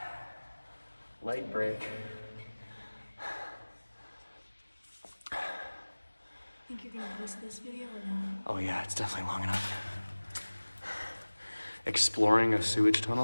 Light break. Think you're gonna post this video or no? Oh yeah, it's definitely long enough. Exploring a sewage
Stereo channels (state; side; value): inverted; both; correlation -1.00